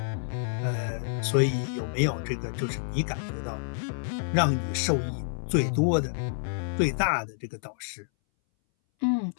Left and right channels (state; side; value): silent; right; 59 dB below the other